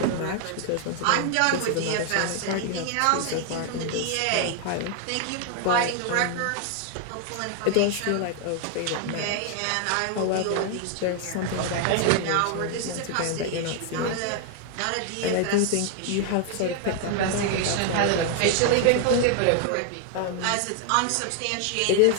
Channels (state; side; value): different; both; correlation 0.00